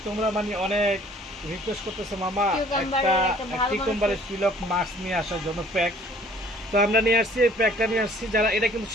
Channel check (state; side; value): normal; both; correlation 0.55